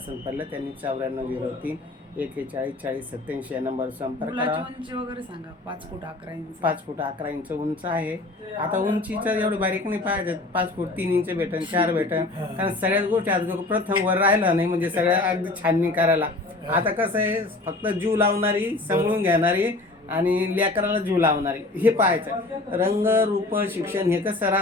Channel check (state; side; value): quieter; right; 3.0 dB